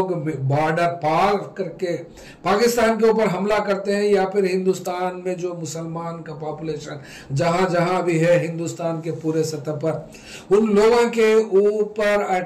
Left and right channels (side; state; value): both; identical; correlation 1.00